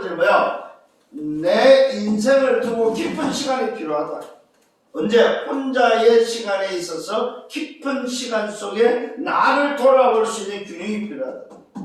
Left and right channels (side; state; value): both; identical; correlation 1.00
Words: 내 인생을 두고 깊은 시간이 필요하다. 언제? 혼자의 시간에 있어서 깊은 시간 속에 나를 돌아볼 수 있는 균형이 필요하다.